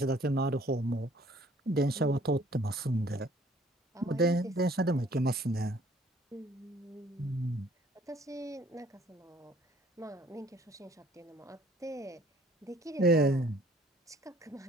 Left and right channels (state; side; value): normal; both; correlation 0.57